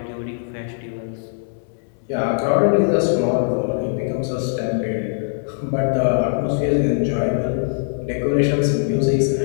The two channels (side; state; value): right; silent; digital silence